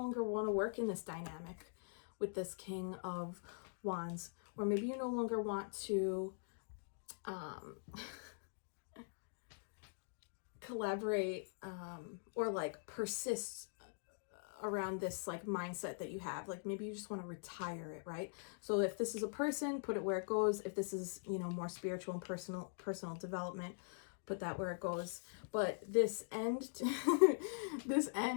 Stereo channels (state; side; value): silent; right; digital silence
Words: want to work in this dynamic with this King of Wands, or maybe you no longer want to collaborate or like persist around this like mindset that you have. Like maybe you just want to retire it, right? So if this is a person, put it where it goes. If this is, more spiritual and personal development, put that where it goes. But this end to